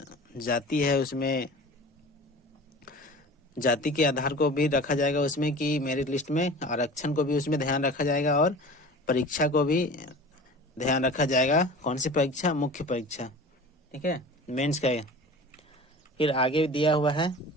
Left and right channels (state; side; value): normal; both; correlation 0.38